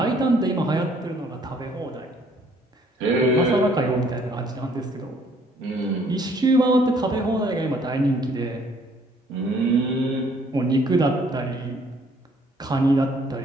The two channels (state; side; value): normal; both; correlation 0.62